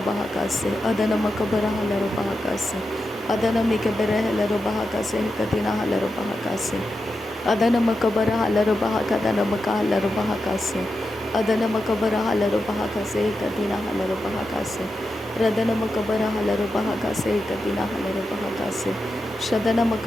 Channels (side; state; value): both; normal; correlation 0.89